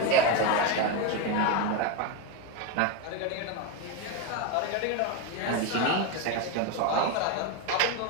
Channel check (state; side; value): different; both; correlation 0.03